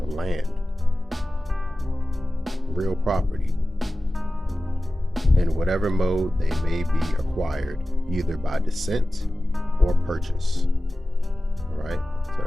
land, real property, in whatever mode they may be acquired, either by descent or purchase. All right, so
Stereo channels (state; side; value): normal; both; correlation 0.96